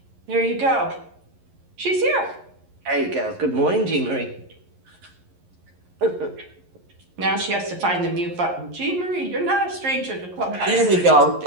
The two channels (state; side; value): late; left; 11 ms